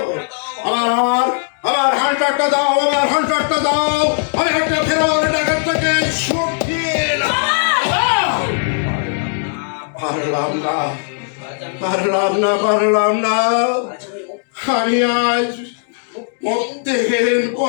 আমার আমার আমার হান্টারটা দাও, আমার হান্টারটা দাও। আমি একটা ফেরার ডাকাতটাকে শুকিয়ে পারলাম না পারলাম না পারলাম না। আমি আজ মধ্যহীন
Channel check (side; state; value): right; silent; digital silence